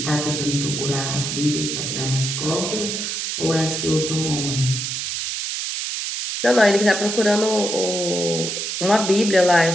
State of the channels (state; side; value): noise; right; hiss, 3 dB below the sound